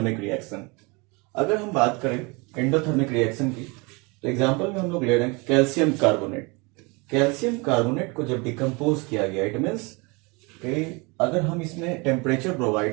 reaction. अगर हम बात करें एंडोथर्मिक रिएक्शन की, तो एग्जांपल में हम लोग ले रहे हैं कैल्शियम कार्बोनेट। कैल्शियम कार्बोनेट को जब डिकम्पोज किया गया, इट मीन्स कि अगर हम इसमें टेम्परेचर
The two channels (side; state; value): left; quieter; 28.2 dB